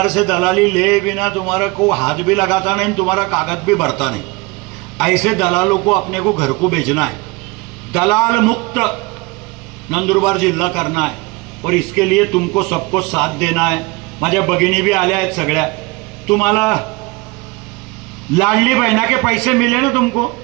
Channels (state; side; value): quieter; left; 25.3 dB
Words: से दलाली ले बिना तुम्हारा को हाथ भी लगाता नहीं, तुम्हारा कागज भी भरता नहीं. ऐसे दलालों को अपने को घर को भेजना है. दलाल मुक्त नंदुरबार जिल्हा करना है और इसके लिए तुमको सबको साथ देना है. माझ्या भगिनी भी आल्या आहेत सगळ्या. तुम्हाला लाडली बहना के पैसे मिले ना, तुमको